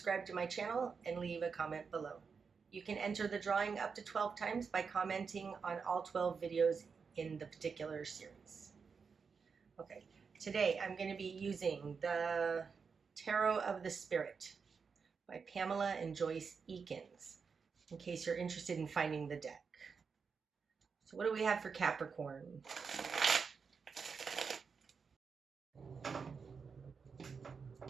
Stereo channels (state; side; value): quieter; left; 5.6 dB